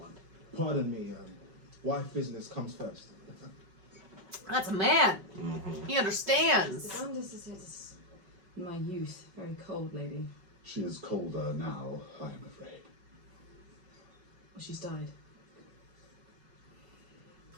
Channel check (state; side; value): late; left; 5.4 ms